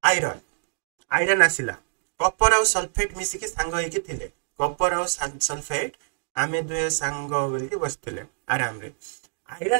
आयरन आसिला कपर और सल्फेट मिसिकी सांग होइके थिले कपर और सल्फेट आमे दुए सांग बोलके बसथिले आराम रे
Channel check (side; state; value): left; silent; digital silence